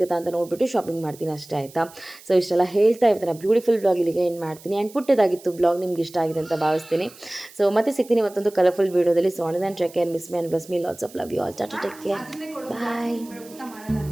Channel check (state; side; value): noise; right; hiss, 21 dB below the sound